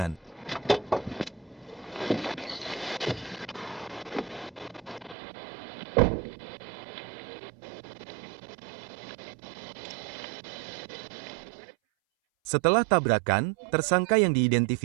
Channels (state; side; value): drops out; left; at 5.2 s